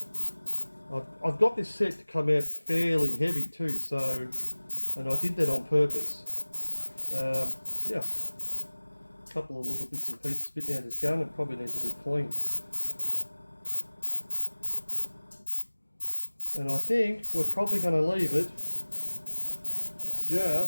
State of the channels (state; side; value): inverted; both; correlation -1.00